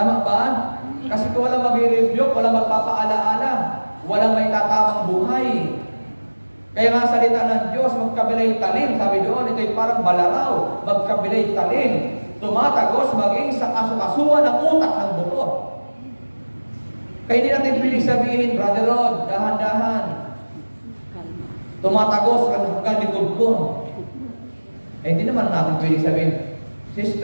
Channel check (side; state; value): both; inverted; correlation -1.00